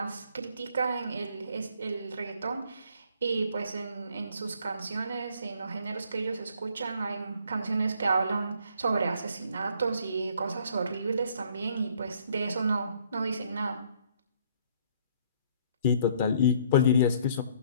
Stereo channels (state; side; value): inverted; both; correlation -0.61